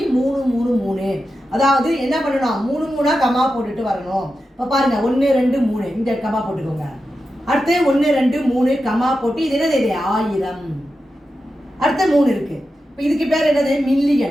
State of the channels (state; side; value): normal; both; correlation 0.90